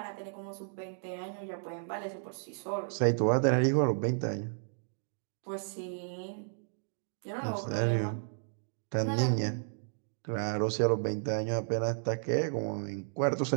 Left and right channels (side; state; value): left; silent; digital silence